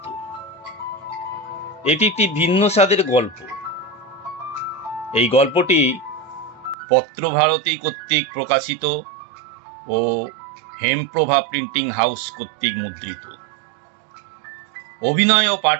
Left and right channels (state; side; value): drops out; left; at 6.8 s